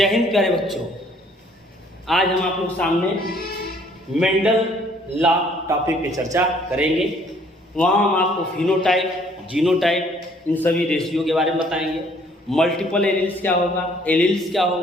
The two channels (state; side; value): normal; both; correlation 0.61